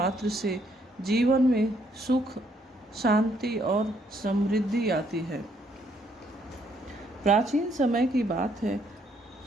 से जीवन में सुख, शांति और समृद्धि आती है। प्राचीन समय की बात है।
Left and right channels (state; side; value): normal; both; correlation 0.69